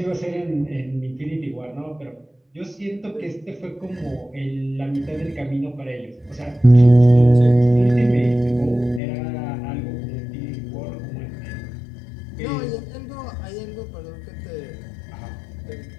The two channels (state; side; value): drops out; right; at 9.0 s